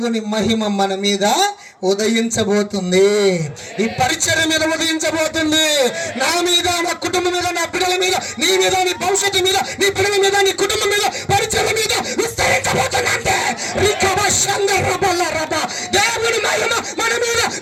మహిమ మన మీద ఉదయించబోతుంది. ఈ పరిచర్య మీద ఉదయించబోతుంది. నా మీద, నా కుటుంబం మీద, నా పిల్లల మీద, నీ మీద, నీ భవిష్యత్తు మీద, నీ పిల్లల మీద, నీ కుటుంబం మీద, పరిచర్య మీద విస్తరించబోతుందంటే దేవుని మహిమ మన మీద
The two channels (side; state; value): both; identical; correlation 1.00